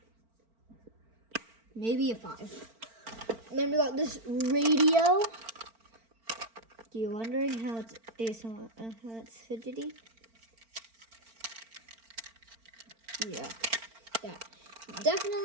Maybe a 5. And then we got this radio. You're wondering how it's fidgety? Yeah,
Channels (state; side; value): late; left; 4.4 ms